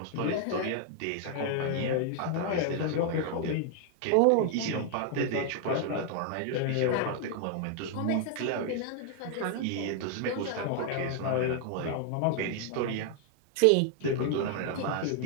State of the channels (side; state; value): both; different; correlation 0.00